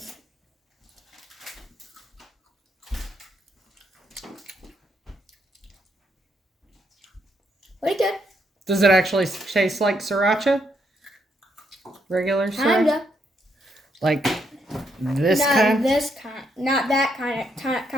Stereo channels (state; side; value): normal; both; correlation 0.76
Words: Pretty good. Does it actually taste like sriracha? Regular sriracha? Kinda. Like this Not kind? this kind. Not that kind.